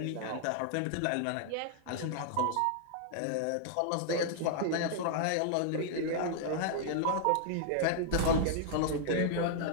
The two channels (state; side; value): different; both; correlation -0.01